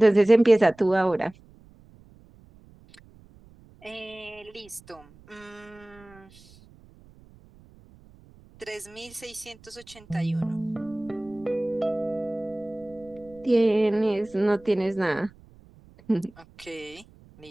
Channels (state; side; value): noise; right; rumble, 25 dB below the sound